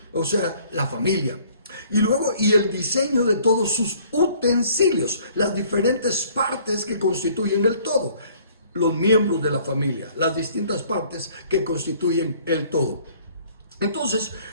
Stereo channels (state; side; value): inverted; both; correlation -0.57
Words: O sea, la familia. Y luego, y el diseño de todos sus utensilios, las diferentes partes que constituyen el todo. Los miembros de la familia, las distintas partes que constituyen el todo. Entonces,